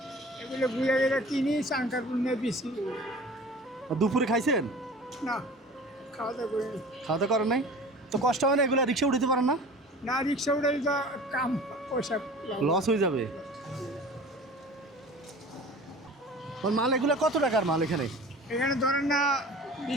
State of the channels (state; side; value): normal; both; correlation 0.41